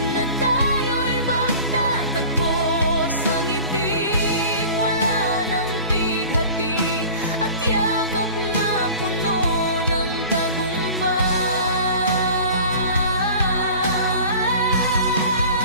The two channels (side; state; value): both; inverted; correlation -0.41